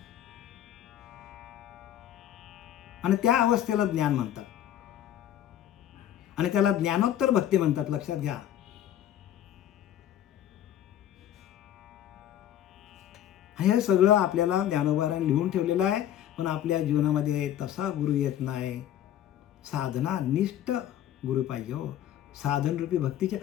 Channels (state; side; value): quieter; right; 11.4 dB